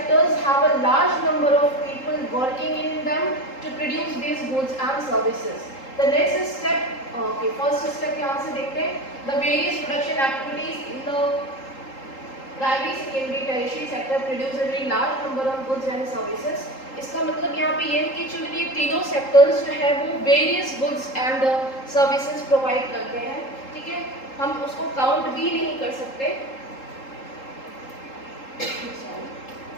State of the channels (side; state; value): right; late; 3.8 ms